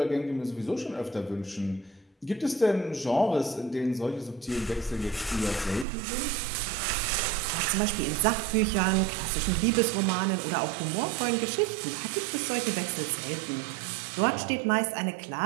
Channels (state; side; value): drops out; left; at 5.9 s